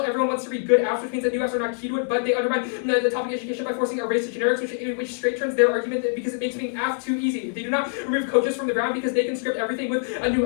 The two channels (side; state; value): right; silent; 62 dB below the other